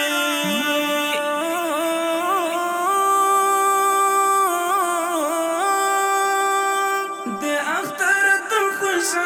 د اختر د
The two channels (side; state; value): both; identical; correlation 1.00